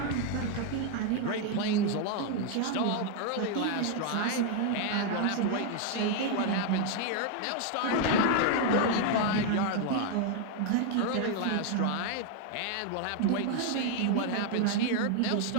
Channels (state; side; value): different; both; correlation 0.00